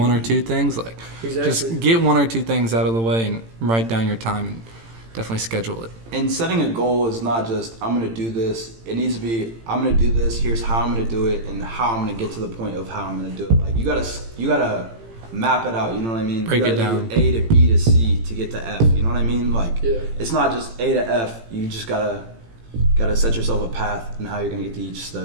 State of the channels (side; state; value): left; late; 18 ms